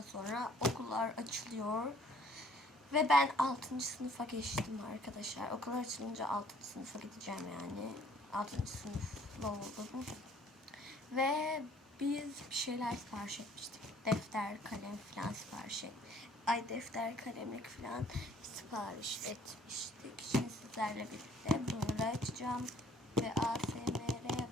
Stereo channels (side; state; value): both; normal; correlation 0.58